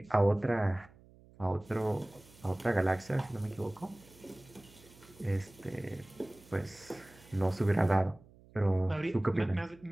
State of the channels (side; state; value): right; noise; hum, 25 dB below the sound